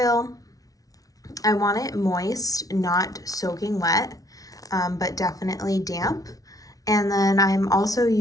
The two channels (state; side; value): late; right; 0.18 ms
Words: I want it moist, not soaking wet, but definitely damp. And then I'm also